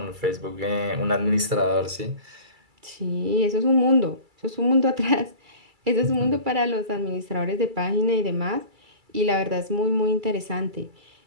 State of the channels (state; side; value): late; left; 2.3 ms